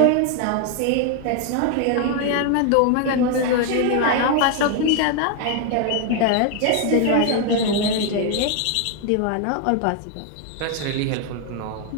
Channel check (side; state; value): both; different; correlation 0.00